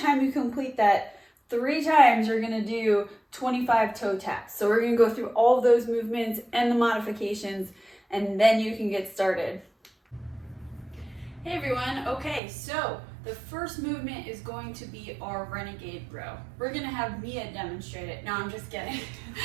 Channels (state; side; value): drops out; left; at 12.4 s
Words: you complete that 3 times, you're gonna do 25 toe taps. So we're gonna go through all of those movements and the modifications, and then you can get started. Hey everyone, okay, so the first movement is going to be our renegade row. We're gonna have Mia demonstrate it. No, I'm just kidding.